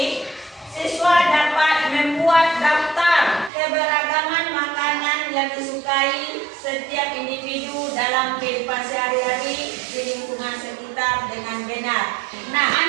siswa dapat membuat daftar keberagaman makanan yang disukai setiap individu dalam kehidupan sehari-hari di lingkungan sekitar dengan benar. Nah,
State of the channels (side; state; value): left; drops out; at 3.5 s